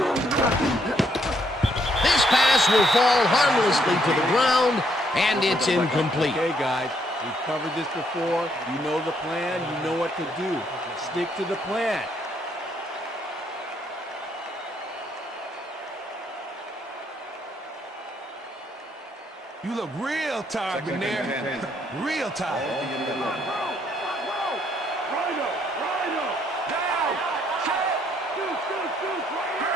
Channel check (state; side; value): normal; both; correlation 0.71